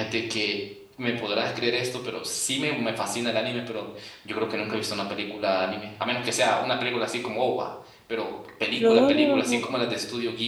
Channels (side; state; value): both; identical; correlation 1.00